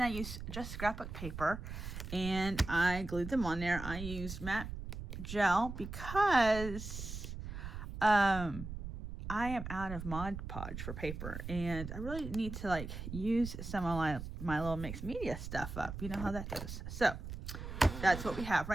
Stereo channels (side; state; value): right; noise; rumble, 8 dB below the sound